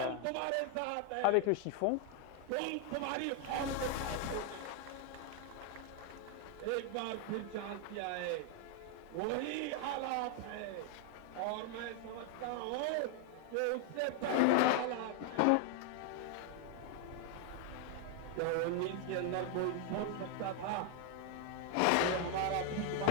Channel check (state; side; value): different; both; correlation 0.01